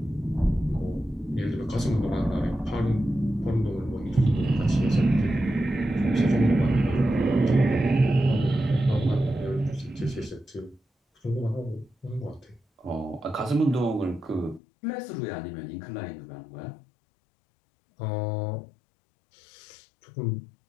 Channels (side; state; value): right; drops out; at 14.6 s